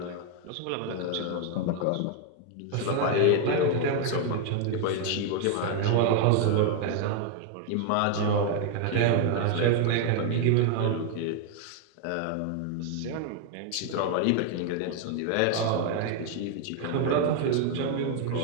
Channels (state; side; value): different; both; correlation 0.00